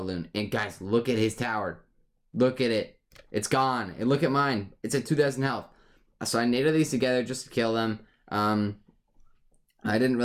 And guys, look at his tower. Look at it. It's gone. And look at mine. It's at 2,000 health. So I native these together just to kill them. I didn't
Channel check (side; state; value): both; identical; correlation 1.00